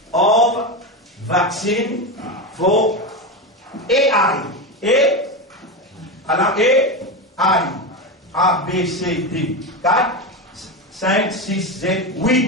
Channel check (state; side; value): normal; both; correlation 0.17